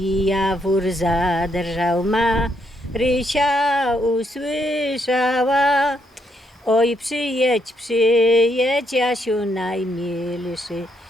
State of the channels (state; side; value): normal; both; correlation 0.75